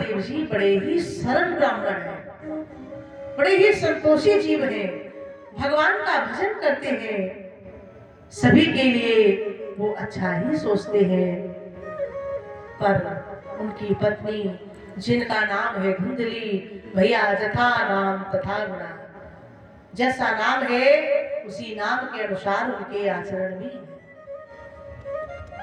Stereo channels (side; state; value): both; identical; correlation 1.00